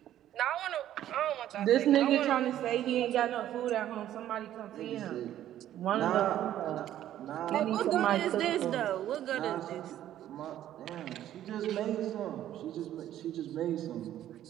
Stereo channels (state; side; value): quieter; left; 12.1 dB